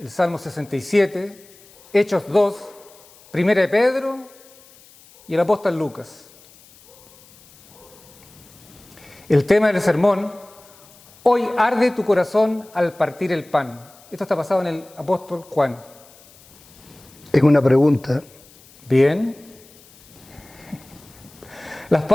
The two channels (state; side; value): noise; left; hiss, 25 dB below the sound